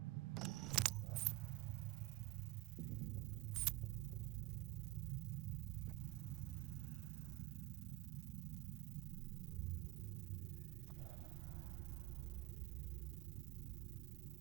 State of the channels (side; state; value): left; quieter; 19.3 dB